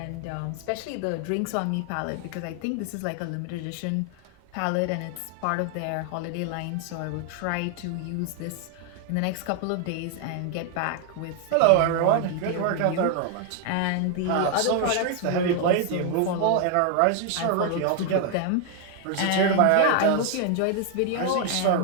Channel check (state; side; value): different; both; correlation 0.00